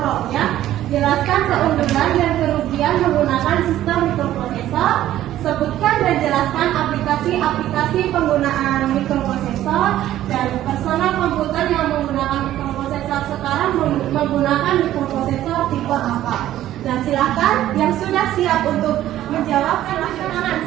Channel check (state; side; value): quieter; left; 13.1 dB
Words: Jelaskan keunggulan dan kerugian menggunakan sistem mikroprosesor. Sebutkan dan jelaskan aplikasi-aplikasi penggunaan mikroprosesor dan personal komputer yang menggunakan mikroprosesor sekarang menggunakan mikroprosesor tipe apa. Nah, silakan yang sudah siap untuk menjawab, silakan.